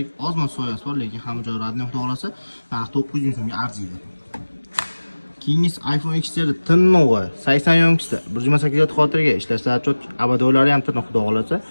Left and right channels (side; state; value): both; inverted; correlation -1.00